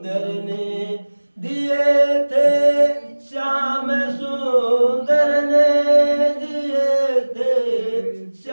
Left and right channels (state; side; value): inverted; both; correlation -1.00